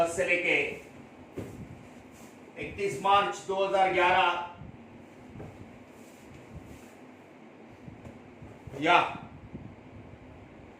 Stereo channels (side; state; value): both; identical; correlation 1.00